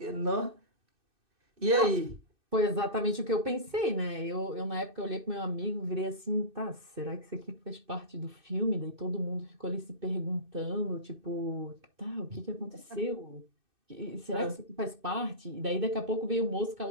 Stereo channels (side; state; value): left; late; 2.6 ms